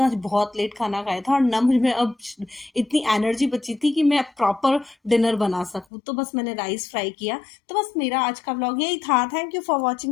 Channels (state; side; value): drops out; right; at 5.9 s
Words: आज बहुत लेट खाना खाया था, और ना मुझ में अब इतनी एनर्जी बची थी कि मैं प्रॉपर डिनर बना सकूं। तो बस मैंने राइस फ्राई किया। तो बस मेरा आज का व्लॉग यही था। Thank you for